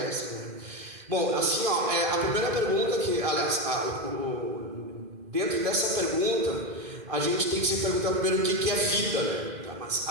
né? Bom, assim, a primeira pergunta que, aliás, dentro dessa pergunta, a gente tem que se perguntar primeiro o que é vida, né? Mas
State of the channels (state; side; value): late; left; 2.1 ms